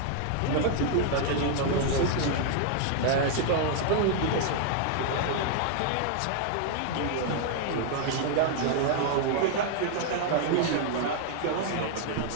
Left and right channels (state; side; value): different; both; correlation 0.00